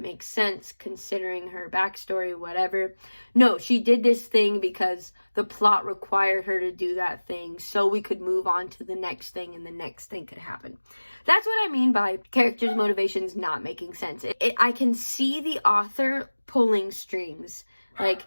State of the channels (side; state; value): both; inverted; correlation -1.00